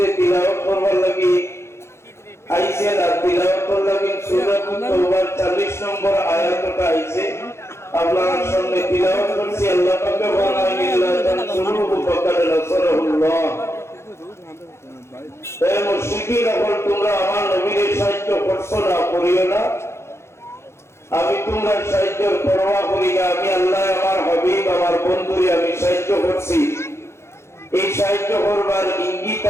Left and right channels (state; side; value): late; right; 0.13 ms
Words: তিলাওয়াত করবার লাগি আইছে না তিলাওয়াত করবার লাগি সূরা তাওবার 40 নম্বর আয়াতটা আইছে আপনার সামনে তিলাওয়াত করছি আল্লাহ পাক বলেন ইল্লা তানসুরুহু ফাকাদ নাসারাহুল্লাহ। হে মুশরিকিন এখন তোমরা আমার নবীর সাহায্য করছো না করিও না আমি তোমার সাহায্যের পরোয়া করি না আমি আল্লাহ আমার হাবিব আমার বন্ধুরে আমি সাহায্য করছি এই সাহায্য করবার ইঙ্গিত